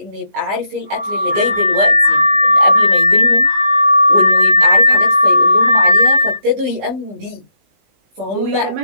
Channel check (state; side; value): late; left; 19 ms